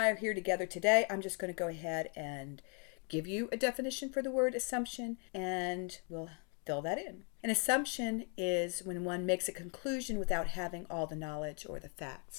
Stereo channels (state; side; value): quieter; right; 38.2 dB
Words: are here together today, I'm just going to go ahead and give you a definition for the word assumption, and we'll fill that in. An assumption is when one makes a conclusion without having all the knowledge or the